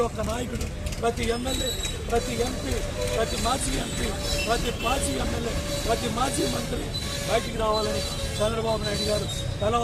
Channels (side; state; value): both; identical; correlation 1.00